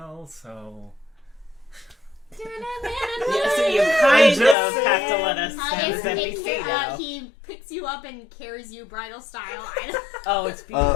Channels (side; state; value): right; drops out; at 4.5 s